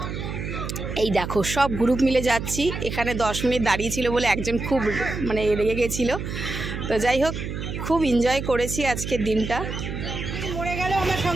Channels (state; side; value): noise; right; hum, 6 dB below the sound